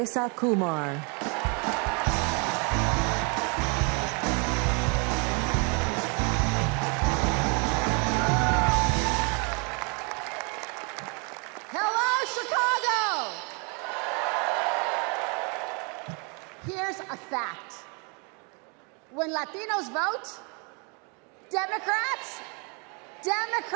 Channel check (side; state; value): left; quieter; 34.1 dB